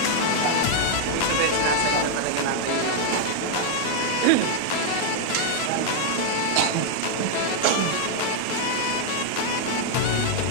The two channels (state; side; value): different; both; correlation 0.00